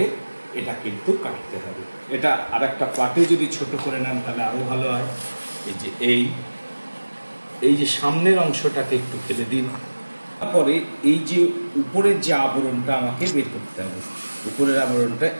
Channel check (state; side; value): inverted; both; correlation -1.00